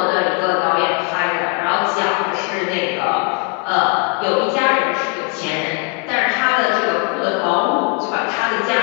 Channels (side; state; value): right; quieter; 30.7 dB